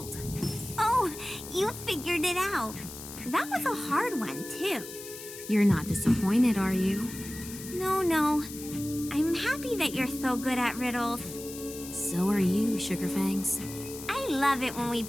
Oh, you figured it out. That was a hard one, too. You're not disappointed, are you? No. I'm happy that you're so good at riddles. So are you, Sugarfangs. I love it when we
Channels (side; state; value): left; noise; hiss, 12 dB below the sound